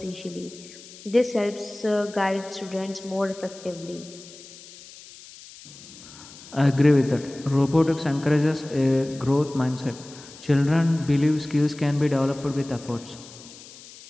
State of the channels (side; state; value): left; noise; hiss, 19 dB below the sound